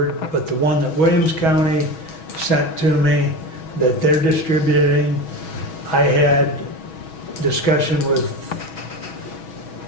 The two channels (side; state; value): right; late; 6.2 ms